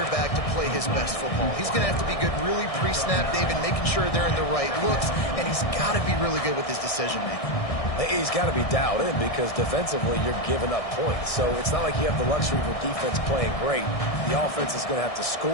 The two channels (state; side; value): late; right; 1.6 ms